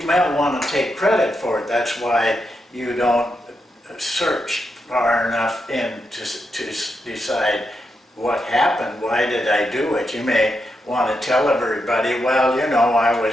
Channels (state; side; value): normal; both; correlation 0.84